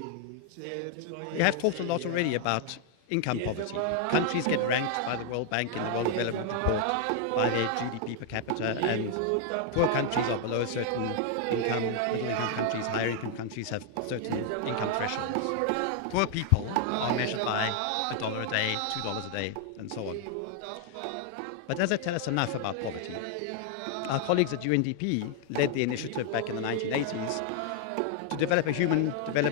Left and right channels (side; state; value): both; different; correlation 0.00